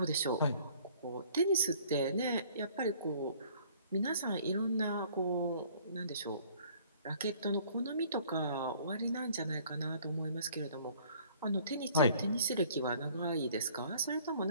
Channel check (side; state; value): both; inverted; correlation -0.56